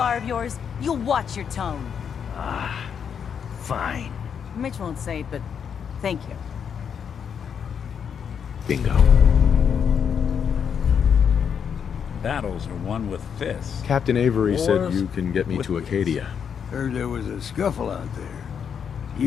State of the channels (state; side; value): quieter; right; 7.4 dB